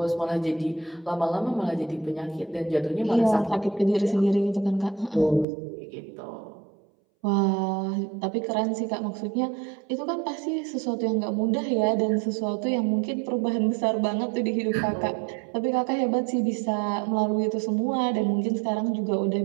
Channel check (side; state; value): left; drops out; at 5.5 s